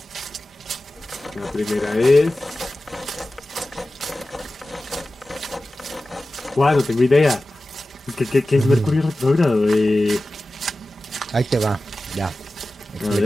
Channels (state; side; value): normal; both; correlation 0.95